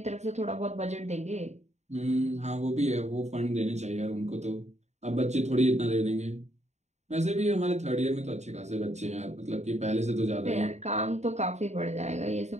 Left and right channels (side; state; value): left; late; 0.33 ms